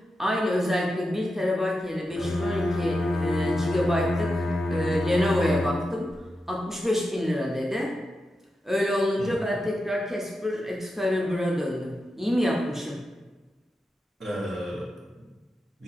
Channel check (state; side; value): normal; both; correlation 0.89